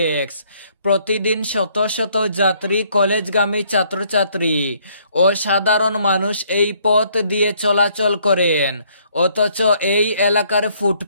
প্রতিদিন শত শত যাত্রী, কলেজগামী ছাত্রছাত্রী ও সাধারণ মানুষ এই পথ দিয়ে চলাচল করেন। অথচ এই এলাকার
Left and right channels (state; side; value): inverted; both; correlation -0.66